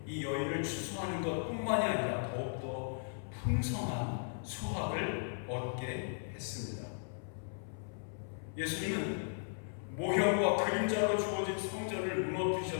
이 여인을 추수하는 것뿐만이 아니라 더욱더 풍성한 수확을 얻게 했습니다. 예수님은 모형과 그림자로 주어진 성전을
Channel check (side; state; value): right; silent; 53 dB below the other